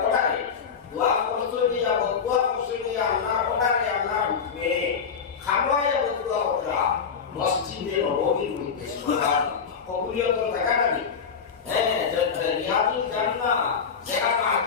পড়ায় দোয়া করছই দিয়া দোয়া করছই দিয়া আল্লাহ পড়ায় আল্লাহ হুকমে খামায়া দোয়া করা মসজিদে নববীর মধ্যে সুবহানাল্লাহ কবুলিয়তের জায়গাটা নেই। হ্যাঁ রিয়াজুল জান্নাহ যেখানে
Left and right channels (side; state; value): right; quieter; 6.4 dB